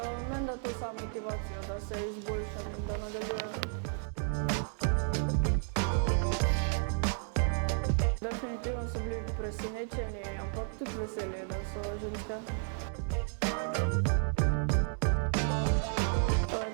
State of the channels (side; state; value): left; silent; 56 dB below the other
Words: Meni da to samo motivacijo, da se izboljšam in da nadaljujem. Definitivno so bili presenečeni, ampak tudi veseli, da so ženske.